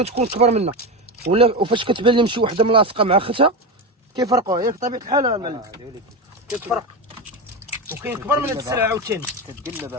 كبر منها، ولا وفاش كتبان لهم شي وحده ملاصقه مع اختها كيفرقوها. ياك طبيعه الحال المعلم كتفرق، وكاين كبر من هاد السلعه عاوتاني. كتقلبها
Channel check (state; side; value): normal; both; correlation 0.17